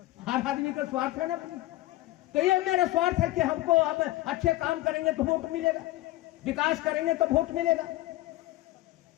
हर आदमी का स्वार्थ है ना, तो ये मेरा स्वार्थ है कि हमको अब अच्छे काम करेंगे तो वोट मिलेगा, विकास करेंगे तो वोट मिलेगा।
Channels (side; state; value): right; quieter; 17.2 dB